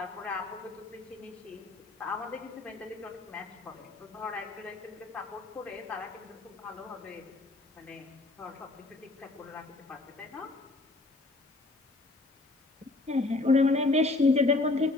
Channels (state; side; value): quieter; right; 3.1 dB